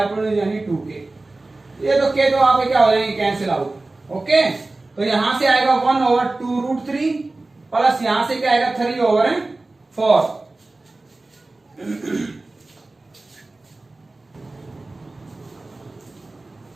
यानी 2k। ये तो k तो आपके क्या हो जाएंगे कैंसिल आउट, ओके। तो यहां से आएगा 1/2√3 प्लस यहां से क्या आएगा 3/4।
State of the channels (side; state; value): left; quieter; 3.1 dB